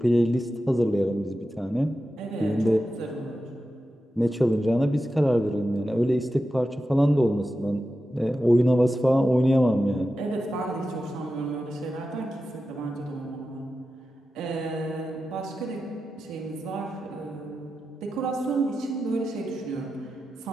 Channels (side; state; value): both; normal; correlation 0.92